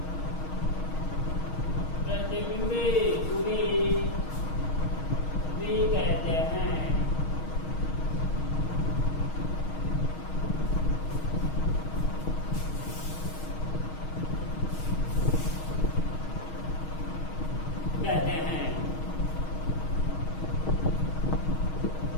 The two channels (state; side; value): late; right; 6.4 ms